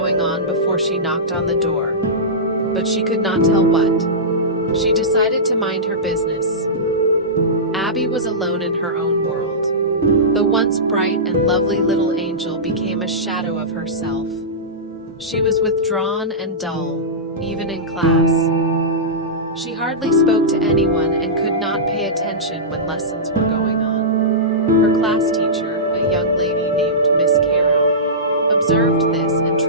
on before she knocked on the door, but she could not tell what. She decided to mind her business. Abby was alone in her own world. The once bright and lovely little angel became a shadow of herself. She was withdrawn and dull, even in class. She hardly spoke to anyone and could not pay attention when lessons were going on. Her class teacher, a young lady named Miss Caro, observed this and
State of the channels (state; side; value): normal; both; correlation -0.17